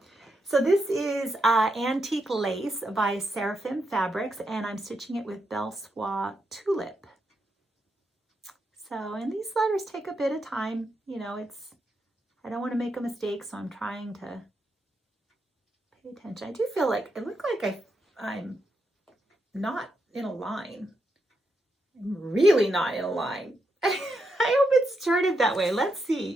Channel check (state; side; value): normal; both; correlation 0.83